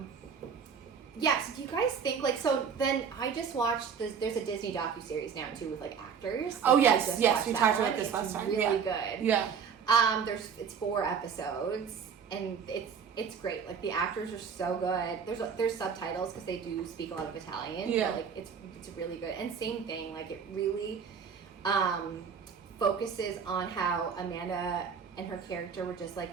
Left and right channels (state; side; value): quieter; left; 6.7 dB